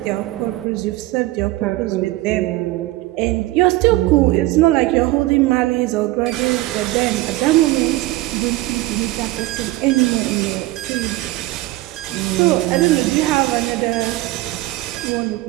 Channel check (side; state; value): left; quieter; 18.0 dB